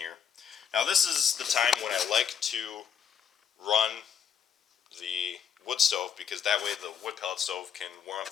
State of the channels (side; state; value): right; quieter; 7.8 dB